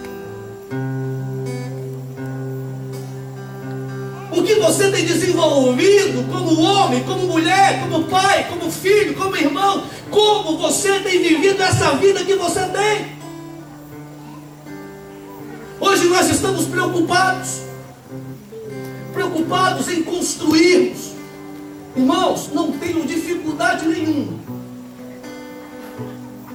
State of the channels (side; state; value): both; identical; correlation 1.00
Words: O que você tem desenvolvido como homem, como mulher, como pai, como filho, como irmão? Como você tem vivido essa vida que você tem? Hoje nós estamos preocupados em construirmos. Irmãos, não tenham dificuldade nenhuma